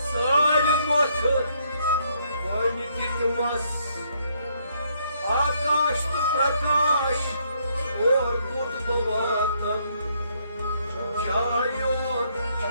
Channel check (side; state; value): both; inverted; correlation -0.71